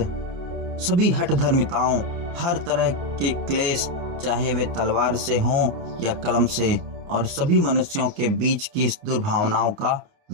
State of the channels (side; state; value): left; late; 29 ms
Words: सभी हठ धर्मिताओं, हर तरह के क्लेश, चाहे वे तलवार से हों या कलम से, और सभी मनुष्यों के बीच की इस दुर्भावनाओं का